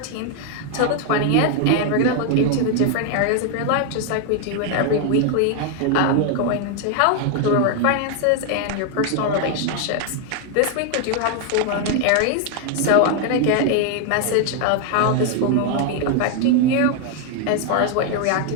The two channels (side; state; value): both; different; correlation 0.00